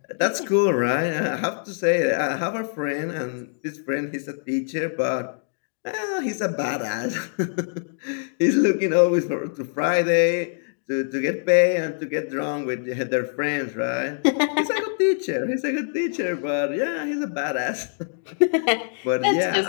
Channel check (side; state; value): right; silent; digital silence